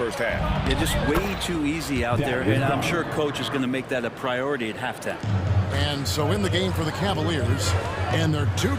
half. Yeah, just way too easy out there, and I'm sure coach is going to make that a priority at halftime. And so in the game for the Cavaliers, and there are 2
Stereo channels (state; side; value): identical; both; correlation 1.00